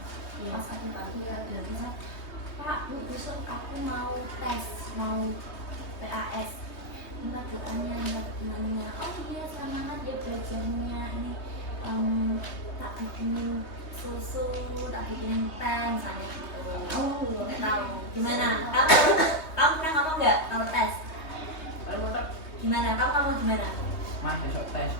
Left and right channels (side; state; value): right; late; 3.2 ms